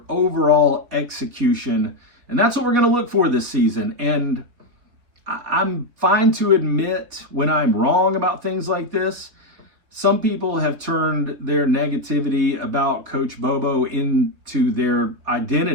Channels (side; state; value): left; late; 4.0 ms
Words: overall execution. And that's what we're going to look for this season. And I'm fine to admit when I'm wrong about things like this, some people have turned their negativity about Coach Bobo into their